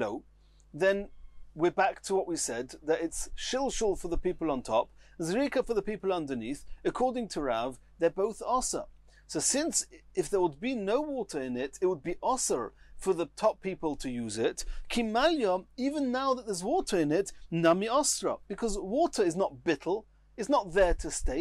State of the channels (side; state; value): both; identical; correlation 1.00